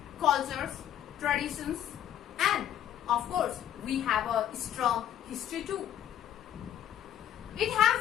cultures, traditions, and of course, we have a strong history too. It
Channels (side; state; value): right; quieter; 10.9 dB